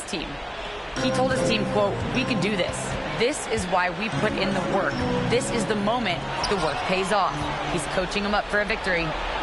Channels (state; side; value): identical; both; correlation 1.00